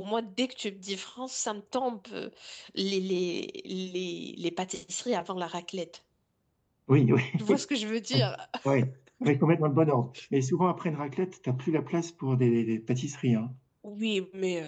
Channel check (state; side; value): identical; both; correlation 1.00